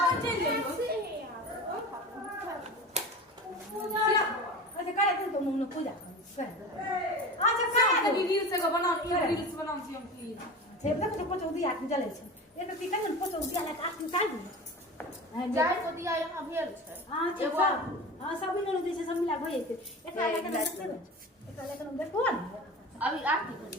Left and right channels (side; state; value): both; normal; correlation 0.32